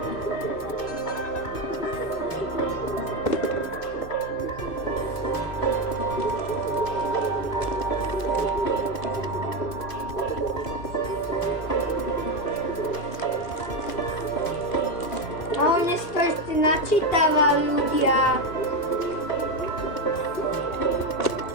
A on si načítava ľudia.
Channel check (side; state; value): right; late; 2.6 ms